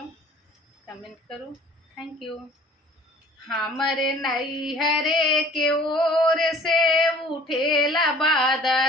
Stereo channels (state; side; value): normal; both; correlation 0.51